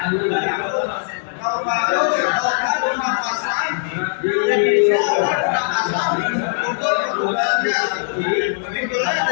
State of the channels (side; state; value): right; silent; digital silence